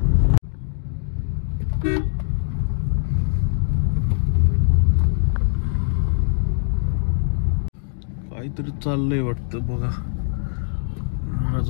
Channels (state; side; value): silent; right; digital silence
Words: काहीतरी चाललंय वाटतं बघा.